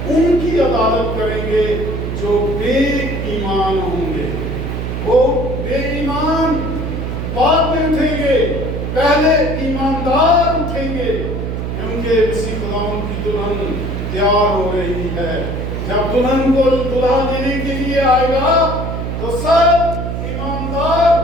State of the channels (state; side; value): noise; right; hum, 3 dB below the sound